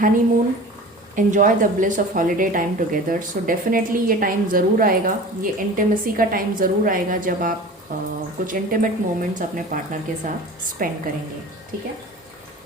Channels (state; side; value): normal; both; correlation 0.38